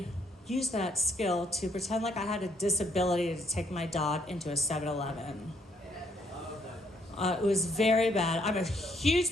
used that skill to pretend like I had a disability to take my dog into a 7-Eleven. It was very bad. I'm a huge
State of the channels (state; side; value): normal; both; correlation 0.69